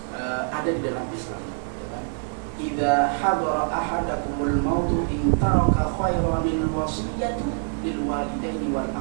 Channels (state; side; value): silent; left; digital silence